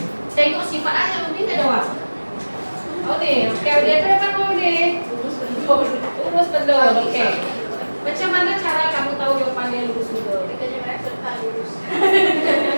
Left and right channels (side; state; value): both; inverted; correlation -1.00